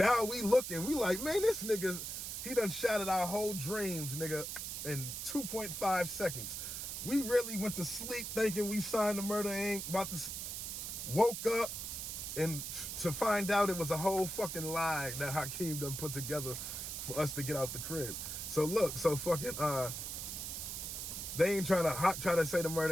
we looking, we like, man, this nigga, he done shattered our whole dreams, nigga, in 2.5 seconds. We really went to sleep thinking we signed the Murder Inc. Woke up and to find out it was a whole fucking lie that Hakeem done put together for us to get out the crib. So look, so fucking they ain't trying to say the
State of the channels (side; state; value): right; noise; hiss, 5 dB below the sound